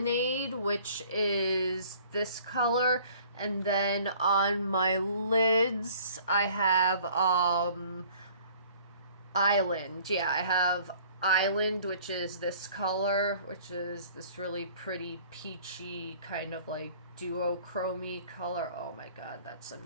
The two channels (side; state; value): both; inverted; correlation -0.53